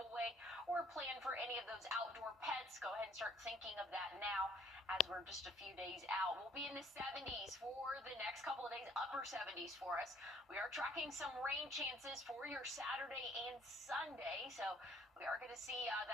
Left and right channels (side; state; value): both; normal; correlation 0.61